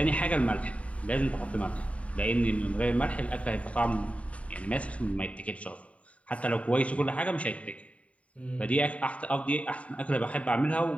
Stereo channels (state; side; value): late; right; 0.066 ms